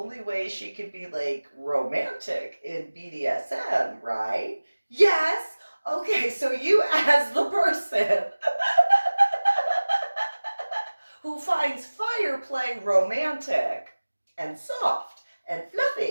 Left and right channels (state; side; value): inverted; both; correlation -1.00